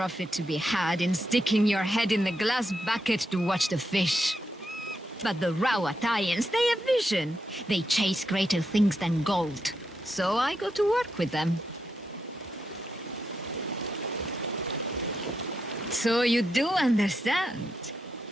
to be had in sticking your head in the glass bucket to watch the fish. But the Rawatayans, they have vision. They chase greater things than gold. So I go to work with them. So you do understand.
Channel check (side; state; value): both; normal; correlation 0.83